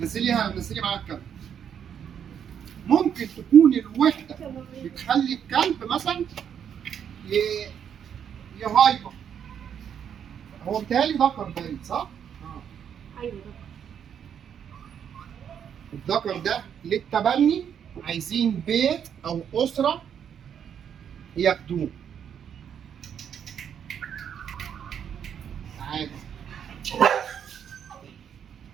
معاك الكلب. ممكن تكون الوحده بتخلي الكلب مثلا يهايبر. هو بيتهيألي ذكر باين صح؟ ايوه الذكر ده للتبني، عايزين بيت او اسره ياخدوه. تعالى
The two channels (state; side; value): quieter; left; 8.4 dB